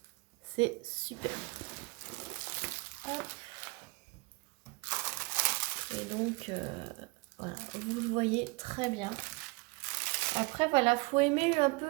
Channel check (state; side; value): quieter; left; 27.4 dB